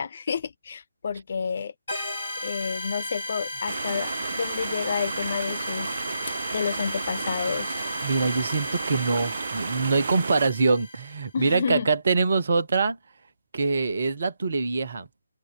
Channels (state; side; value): inverted; both; correlation -0.81